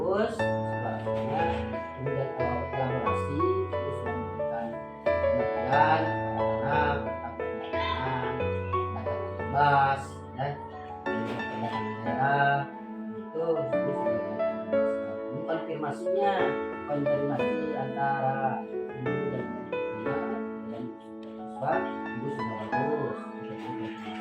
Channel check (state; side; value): identical; both; correlation 1.00